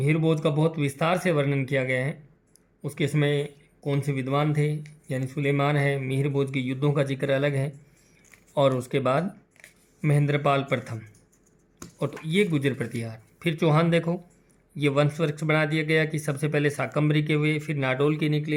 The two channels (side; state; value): both; identical; correlation 1.00